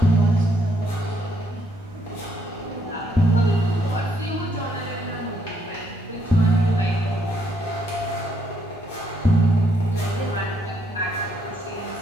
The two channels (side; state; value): both; normal; correlation 0.72